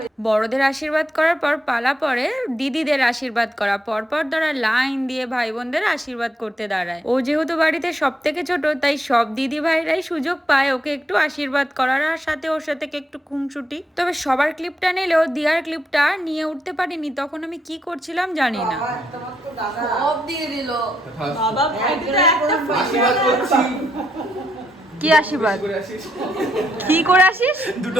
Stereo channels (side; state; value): both; normal; correlation 0.79